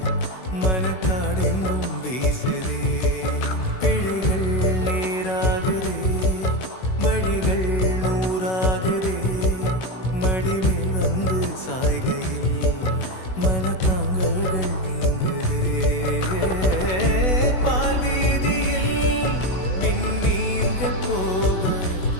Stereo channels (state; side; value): late; right; 16 ms